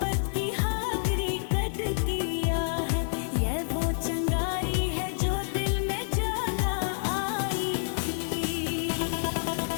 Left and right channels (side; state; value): right; silent; digital silence